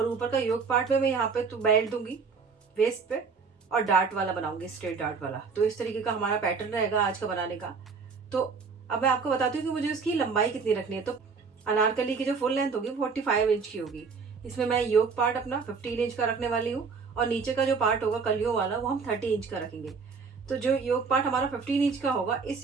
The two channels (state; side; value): quieter; left; 5.2 dB